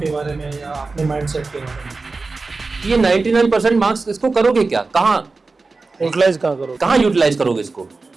बारे में या अपने माइंडसेट के बारे में? ये 99% मार्क्स इसको करोगे क्या, कहाँ यूटिलाइज करोगे इसको?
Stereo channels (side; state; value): left; quieter; 3.9 dB